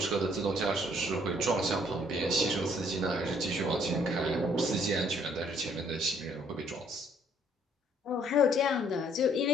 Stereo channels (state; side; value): normal; both; correlation 0.64